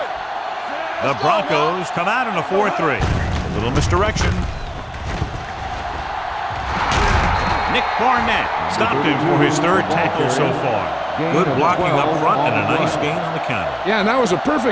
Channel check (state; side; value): identical; both; correlation 1.00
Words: The Broncos come out in a 4-3. A little misdirection. Nick Barnett stopped him for his 3rd tackle so far. Good blocking up front and a nice gain on the counter. Yeah, and that was a